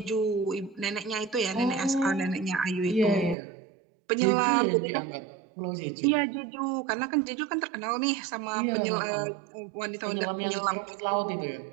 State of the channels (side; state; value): left; drops out; at 3.4 s